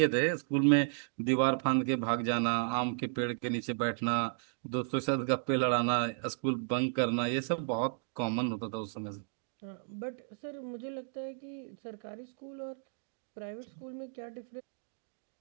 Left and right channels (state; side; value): silent; left; digital silence